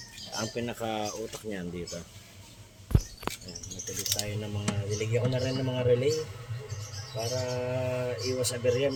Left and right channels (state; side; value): identical; both; correlation 1.00